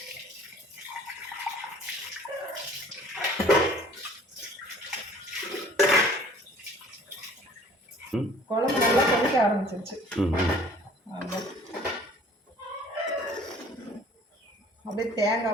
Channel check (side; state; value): both; normal; correlation 0.52